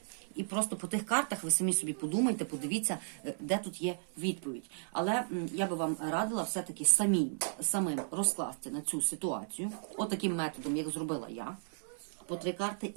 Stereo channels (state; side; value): silent; left; 55 dB below the other